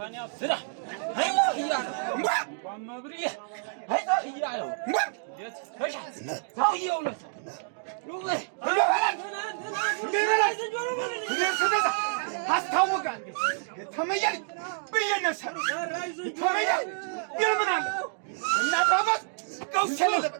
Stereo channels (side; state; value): left; silent; digital silence